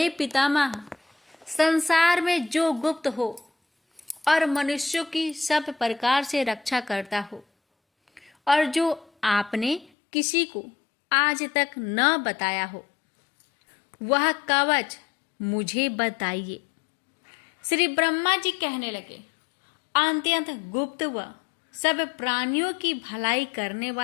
पितामह, संसार में जो गुप्त हो और मनुष्यों की सब प्रकार से रक्षा करता हो और जो आपने किसी को आज तक न बताया हो, वह कवच मुझे बताइए। श्री ब्रह्मा जी कहने लगे, अत्यंत गुप्त व सब प्राणियों की भलाई करने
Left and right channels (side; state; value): right; drops out; at 9.9 s